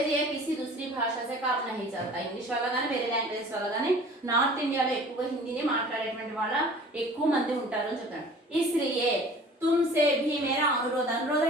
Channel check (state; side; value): normal; both; correlation 0.46